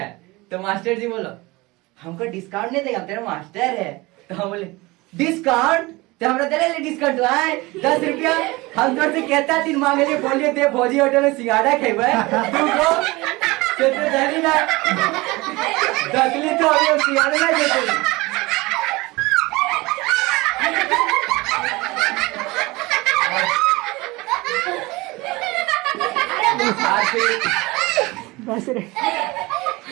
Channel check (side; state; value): left; quieter; 22.3 dB